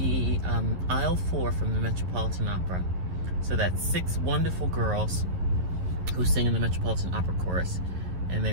aisle 4 from the Metropolitan Opera. So that's 6 wonderful girls who sing in the Metropolitan Opera Chorus, and they're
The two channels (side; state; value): left; late; 11 ms